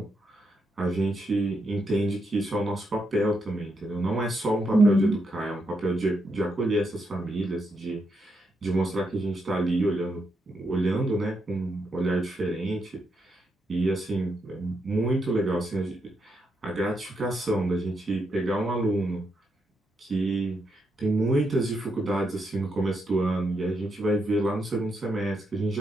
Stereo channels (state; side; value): normal; both; correlation 0.81